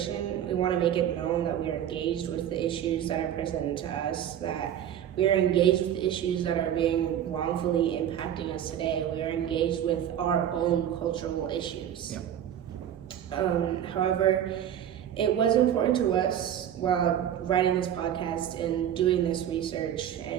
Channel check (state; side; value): quieter; left; 10.2 dB